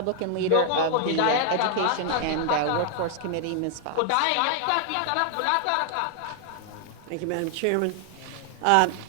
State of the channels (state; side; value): different; both; correlation 0.00